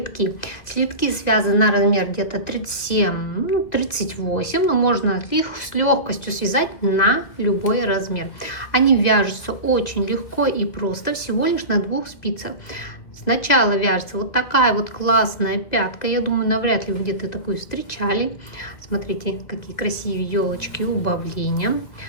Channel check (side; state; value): right; late; 2.4 ms